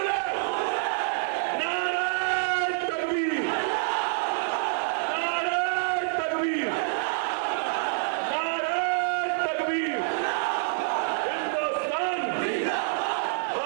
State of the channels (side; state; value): left; silent; 56 dB below the other